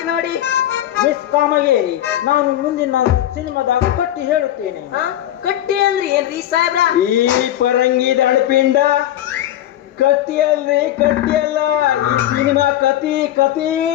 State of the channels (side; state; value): right; quieter; 12.6 dB